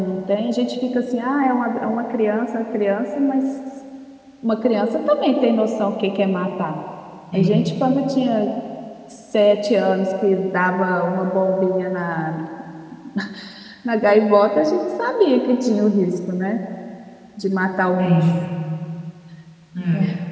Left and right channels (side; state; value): both; identical; correlation 1.00